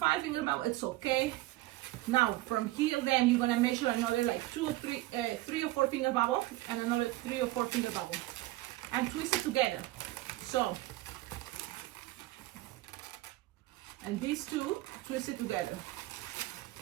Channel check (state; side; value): quieter; left; 18.1 dB